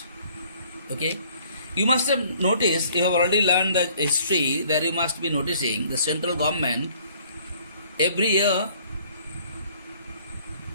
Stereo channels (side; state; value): both; inverted; correlation -0.58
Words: Okay? You must have noticed, you have already learned the history, that you must be noticing the central government every year